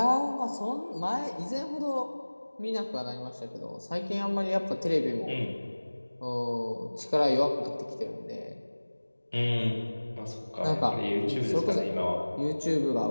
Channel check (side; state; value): both; inverted; correlation -1.00